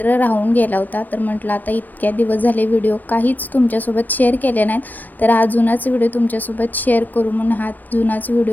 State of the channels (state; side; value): late; right; 0.084 ms